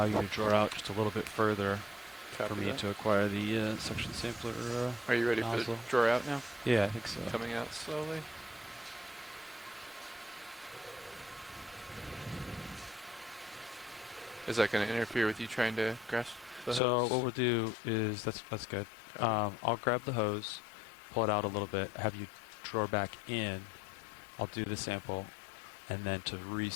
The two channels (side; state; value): right; drops out; at 16.8 s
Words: you to draw out just a little bit further Copy for me that. to acquire the suction sampler. Are you ready for nozzle. the draw out now? Yeah, I think so. Coming out slowly. Is that going to interfere with you trying to grasp? the So hose. what we'll do is that's good. I'll grab the hose, pull it out a little bit, have you draw back in. I'll do the sample, and then to